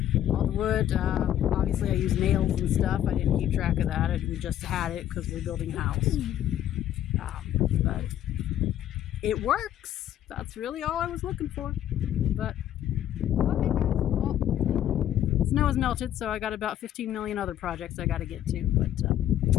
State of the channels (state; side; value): quieter; right; 11.5 dB